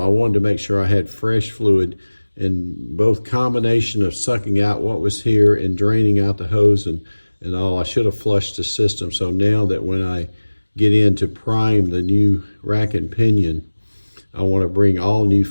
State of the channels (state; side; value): inverted; both; correlation -1.00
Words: wanted to make sure I had fresh fluid, and both combination of sucking out what was here and draining out the hose and all. I should have flushed the system. So now that when I get in to prime the new rack and pinion, I want to bring all new